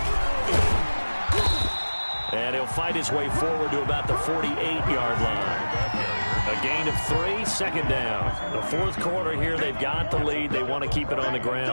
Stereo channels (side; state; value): both; inverted; correlation -1.00